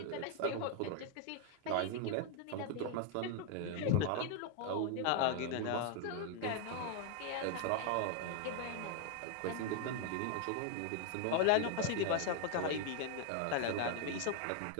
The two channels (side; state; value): both; different; correlation 0.00